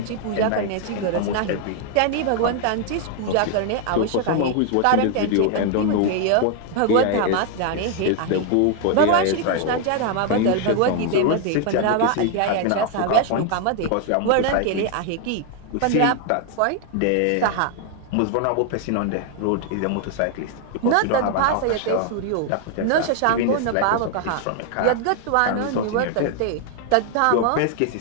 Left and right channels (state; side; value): different; both; correlation 0.00